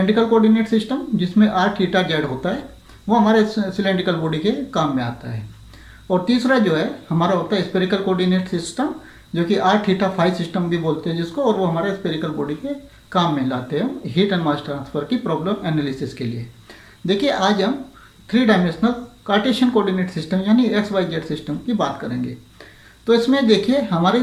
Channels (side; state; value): both; identical; correlation 1.00